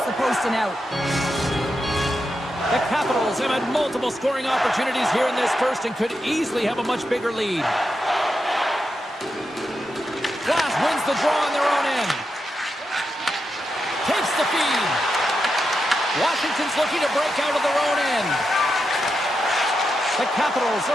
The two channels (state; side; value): normal; both; correlation 0.87